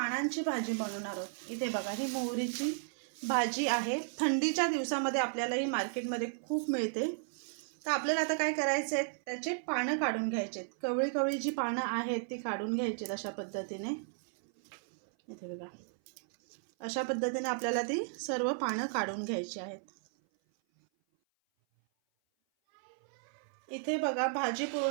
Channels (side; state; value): left; silent; 55 dB below the other